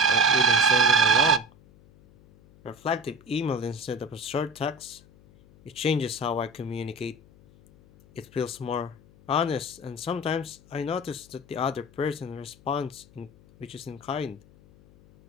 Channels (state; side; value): noise; left; hum, 26 dB below the sound